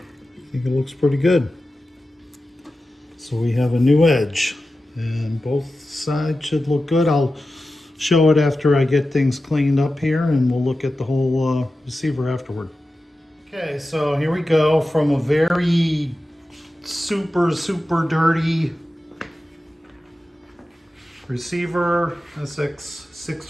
think it looks pretty good. So we have a new edge, and both sides should look good. I'll show it after I get things cleaned up here, and we'll look at the whole receiver afterward. Okay, so here we go from a very super dirty receiver,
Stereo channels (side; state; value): both; normal; correlation 0.93